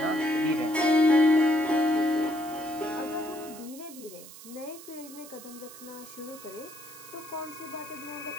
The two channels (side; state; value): right; noise; hiss, 16 dB below the sound